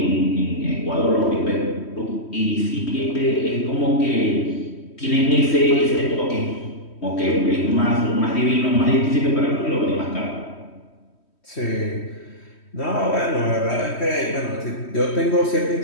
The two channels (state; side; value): late; right; 3.1 ms